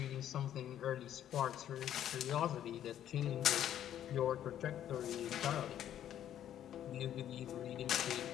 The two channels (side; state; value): right; quieter; 10.9 dB